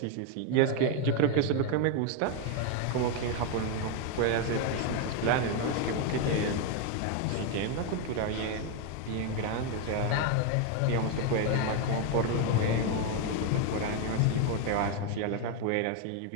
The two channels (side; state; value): both; different; correlation 0.01